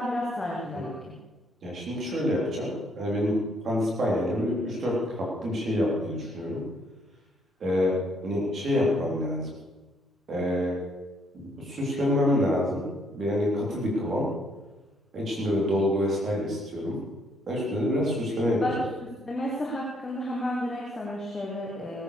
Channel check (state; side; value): normal; both; correlation 0.69